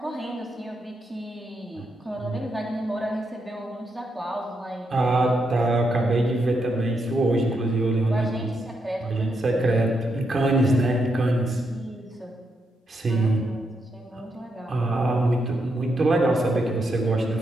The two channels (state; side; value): normal; both; correlation 0.81